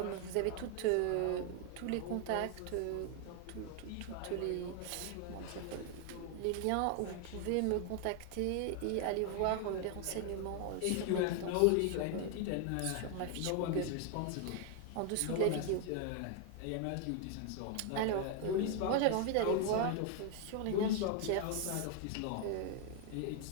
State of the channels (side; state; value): both; different; correlation 0.00